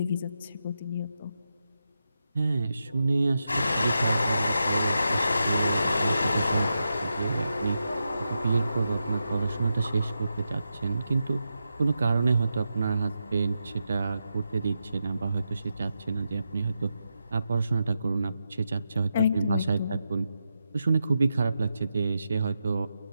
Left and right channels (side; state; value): both; inverted; correlation -0.87